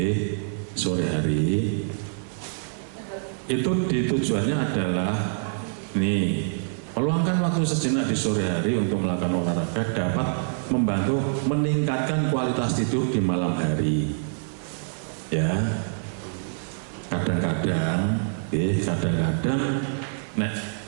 sore hari itu tujuannya adalah meluangkan waktu sejenak di sore hari untuk melakukan olahraga dapat membantu meningkatkan kualitas tidur di malam hari. Ya, kadang-kadang nek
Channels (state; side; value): silent; left; 61 dB below the other